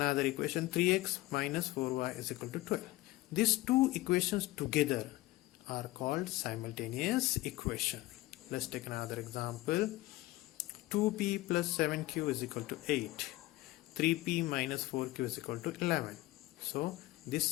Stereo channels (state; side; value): quieter; right; 18.3 dB